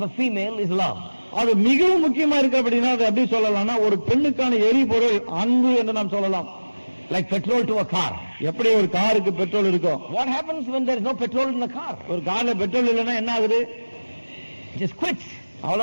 a female is love. அது மிகவும் முக்கியமா இருக்கு. அப்படின்னா அதை எப்படி சொல்லலாம்னா ஒரு பெண்ணுக்கான எரிபொருள் அன்பு என்று நாம் சொல்லலாம். Like petrol to a car. எப்படி ஒரு காருக்கு பெட்ரோல் இருக்கும்? What happens when there is no petrol in the car? ஒரு கார்ல பெட்ரோல் இல்லைன்னா என்ன ஆகுது? It just quits.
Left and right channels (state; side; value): inverted; both; correlation -1.00